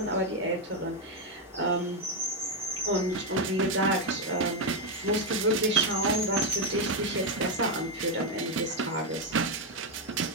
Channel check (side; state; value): both; normal; correlation 0.04